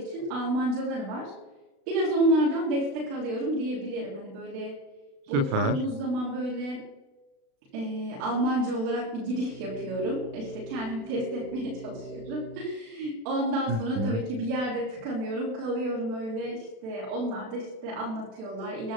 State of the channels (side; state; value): left; late; 36 ms